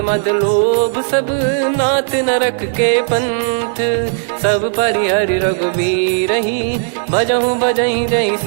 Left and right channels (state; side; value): silent; left; 69 dB below the other